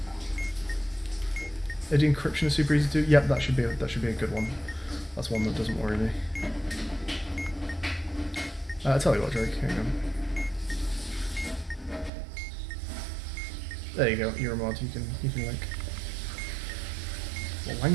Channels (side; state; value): left; drops out; at 12.1 s